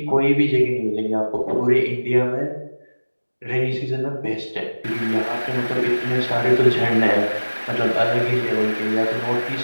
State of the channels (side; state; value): both; inverted; correlation -1.00